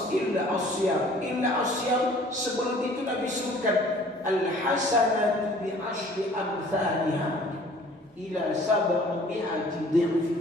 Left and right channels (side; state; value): both; normal; correlation 0.52